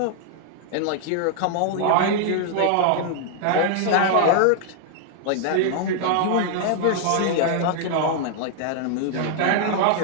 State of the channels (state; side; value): different; both; correlation -0.01